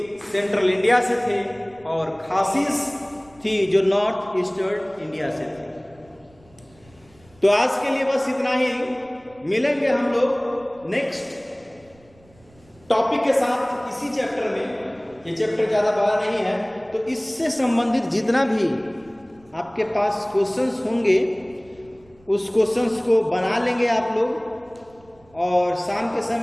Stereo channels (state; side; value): noise; right; rumble, 29 dB below the sound